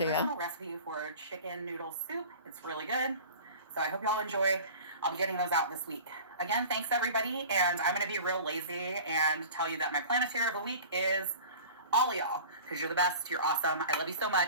personal recipe for chicken noodle soup. It's really good. So I hope y'all enjoy. I'll be getting those out this week. Again, thanks everybody. And I'm going to be real lazy and tell you that my Planeteer of the week is all of y'all, because you're the best. You're awesome. I love you so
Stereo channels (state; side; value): inverted; both; correlation -0.40